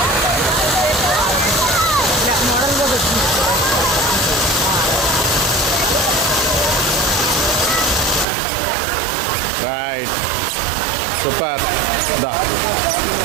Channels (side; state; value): left; drops out; at 8.2 s